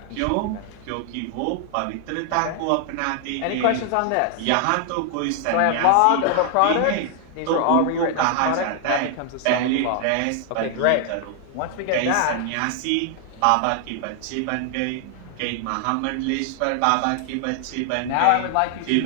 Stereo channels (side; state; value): both; different; correlation 0.00